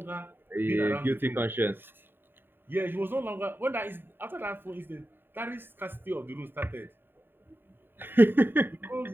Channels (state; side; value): late; left; 0.097 ms